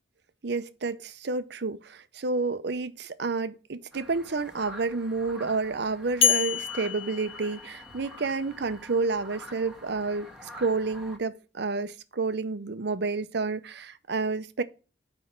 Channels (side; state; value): both; normal; correlation -0.06